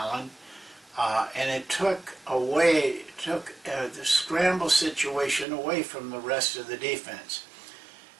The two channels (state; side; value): drops out; left; at 5.5 s